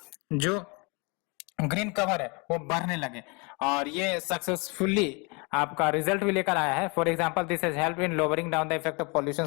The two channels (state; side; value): quieter; right; 30.5 dB